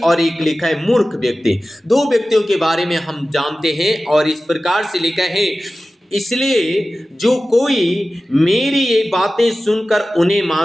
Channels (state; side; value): normal; both; correlation 0.95